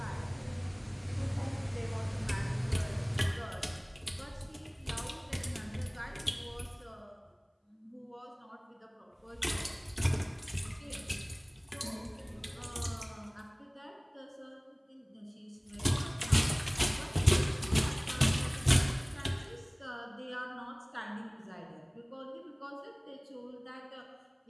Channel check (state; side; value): identical; both; correlation 1.00